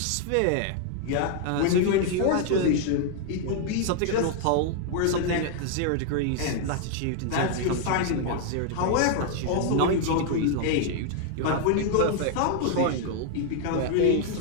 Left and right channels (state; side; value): different; both; correlation 0.00